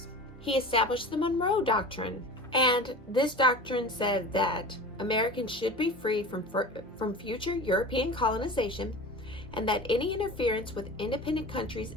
He established the Monroe Doctrine, and this doctrine said that Americans should be free from future European colonization, and that any interference with independent countries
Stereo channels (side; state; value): both; normal; correlation 0.34